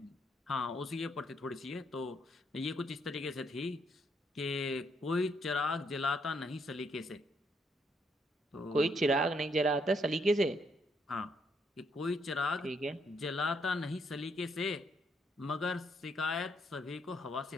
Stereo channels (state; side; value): normal; both; correlation 0.73